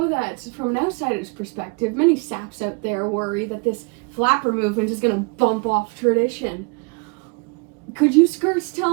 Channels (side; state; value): left; quieter; 33.0 dB